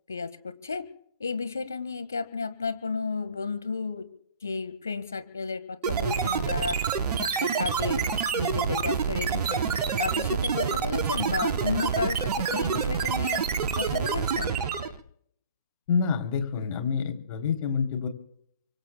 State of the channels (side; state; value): both; inverted; correlation -0.46